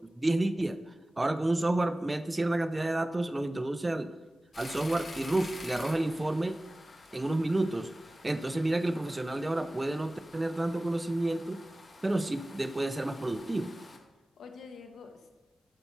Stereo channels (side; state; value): both; normal; correlation 0.98